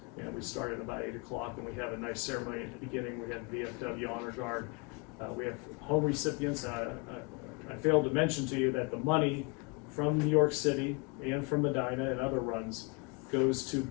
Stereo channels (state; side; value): quieter; right; 30.4 dB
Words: And we started about 8 o'clock, and we have a nice ceremony at the beginning. We had VFW Honor Guard. We have home recipients. I failed to mention to you that the money from New York City and from Medina and other runs goes to